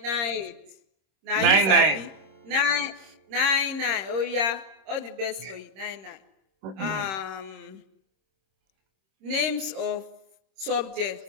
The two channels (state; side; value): late; left; 26 ms